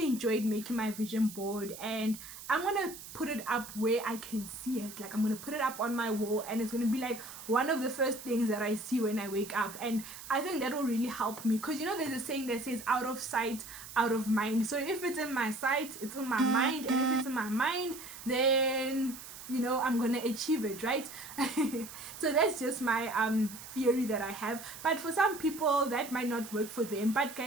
enjoyed making my vision board, and I'm gonna put it up where I can see it. Like, I'm gonna put it up on my wall, and it's gonna be like one of the first things that I see when I wake up. And I think that will really help me, because there's a saying that says out of sight, out of mind. So if it's in my sight, it's in my mind, and if it's in my mind, then you know, I'm gonna achieve it, right? So that's just my theory that I have. But for some people that might not work for them. But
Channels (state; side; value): noise; right; hiss, 13 dB below the sound